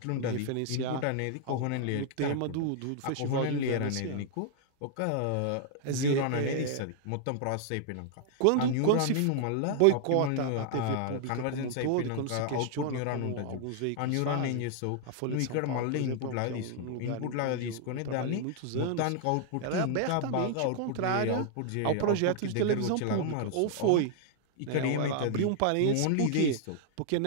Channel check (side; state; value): both; different; correlation -0.01